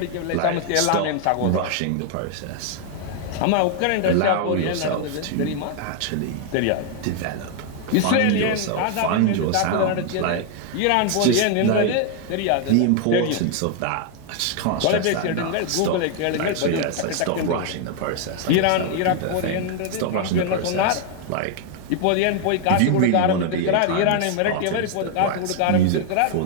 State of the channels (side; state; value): both; different; correlation 0.00